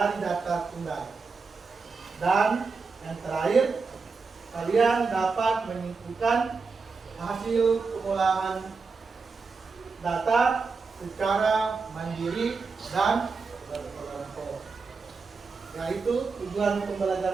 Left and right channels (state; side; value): quieter; left; 4.6 dB